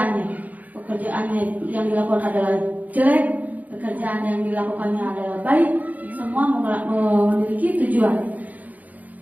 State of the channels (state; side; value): late; left; 0.079 ms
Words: yang dilakukan adalah jelek, pekerjaan yang dilakukannya adalah baik, semua memiliki tujuan.